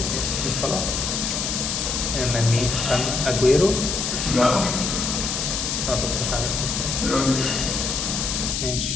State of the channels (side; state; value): left; noise; hiss, 1 dB below the sound